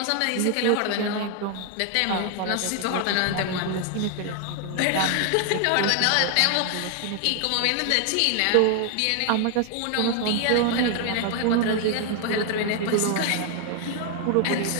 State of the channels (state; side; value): different; both; correlation 0.00